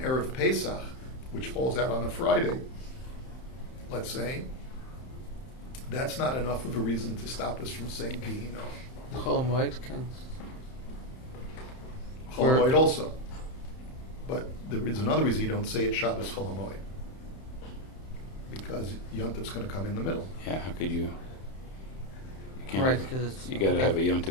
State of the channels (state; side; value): late; right; 31 ms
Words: Pesach, which falls out on a Friday, let's say, that's not enough of a reason to stop us from saying Vihi Noam. Chol Hamoed can. Chol Hamoed also. But there is another reason you don't say it Shabbos Chol Hamoed, because Yom Tov's going to come in the middle. Yeah, how could you? Can't Right, because you got to have a Yom